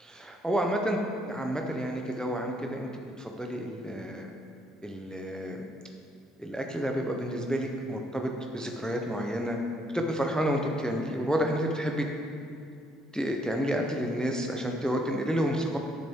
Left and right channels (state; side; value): normal; both; correlation 0.70